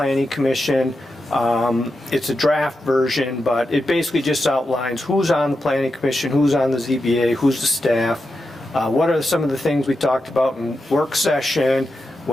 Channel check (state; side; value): normal; both; correlation 0.88